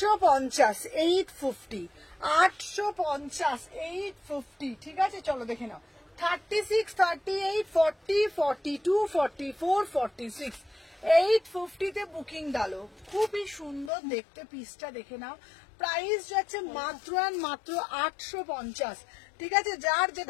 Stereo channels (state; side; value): drops out; right; at 13.9 s